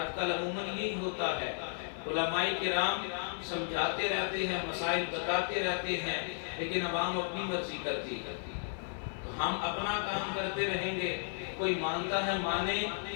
کل عموماً یہی ہوتا ہے، علماء کرام سمجھاتے رہتے ہیں، مسائل بتاتے رہتے ہیں، لیکن عوام اپنی مرضی کرتی ہے۔ تو ہم اپنا کام کرتے رہیں گے، کوئی مانتا ہے مانے،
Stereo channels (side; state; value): right; silent; 55 dB below the other